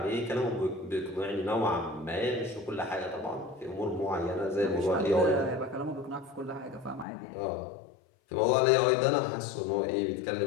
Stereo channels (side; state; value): right; drops out; at 7.1 s